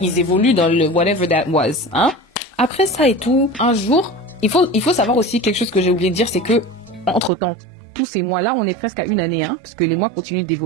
évoluent dans le whatever that was. Hein? Après ça et tout, un jour, il faut savoir aussi quelque chose que j'ai oublié de dire, c'est que entre-temps, par tous ces mois-là, on est presque à une année, hein, parce que les mois continuent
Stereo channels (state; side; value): drops out; left; at 7.3 s